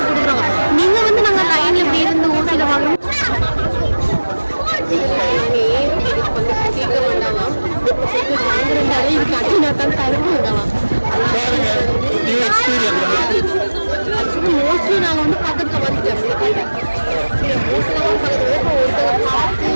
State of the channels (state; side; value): inverted; both; correlation -1.00